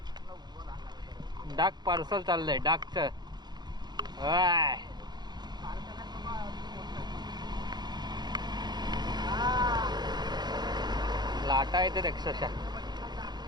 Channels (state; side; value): late; left; 0.20 ms